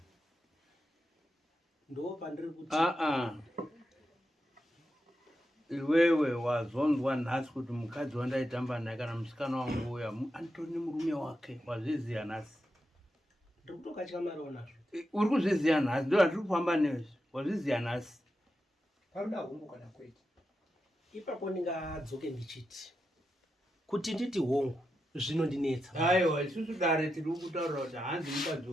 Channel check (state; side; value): normal; both; correlation 0.87